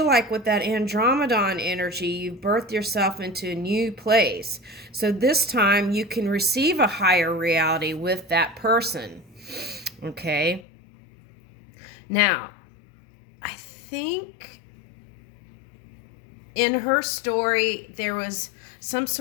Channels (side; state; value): right; drops out; at 10.7 s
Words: like with that Andromedon energy, you've birthed yourself into a new place. So this time you can receive a higher reality with that person. Okay? Now, I think in her story, there was some